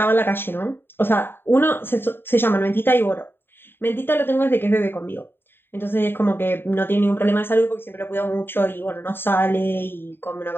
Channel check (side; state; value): right; late; 0.10 ms